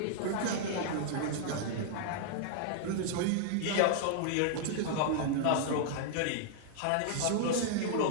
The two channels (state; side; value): different; both; correlation -0.01